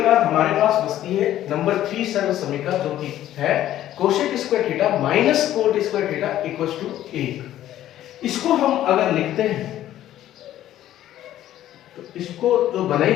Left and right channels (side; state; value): right; quieter; 12.8 dB